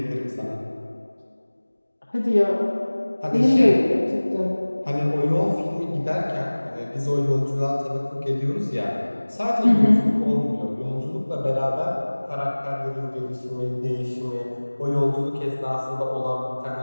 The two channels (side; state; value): both; inverted; correlation -1.00